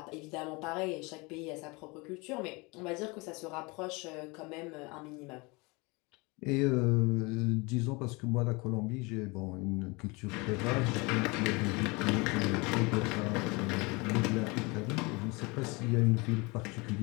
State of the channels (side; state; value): right; quieter; 26.7 dB